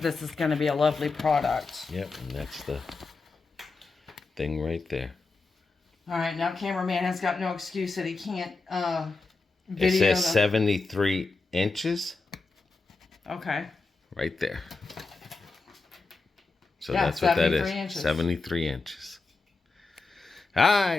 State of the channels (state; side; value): quieter; right; 3.9 dB